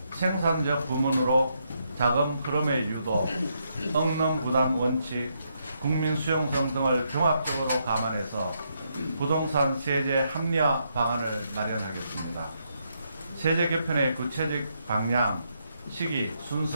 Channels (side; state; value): both; inverted; correlation -0.78